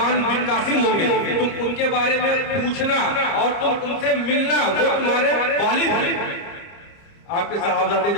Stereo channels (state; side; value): late; right; 30 ms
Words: بن قاسم ہوں گے، تم ان کے بارے میں پوچھنا اور تم ان سے ملنا، وہ تمہارے والد ہیں۔ آپ کے صحابہ